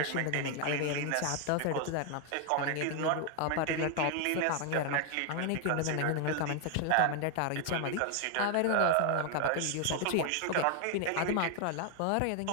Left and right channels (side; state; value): both; different; correlation 0.00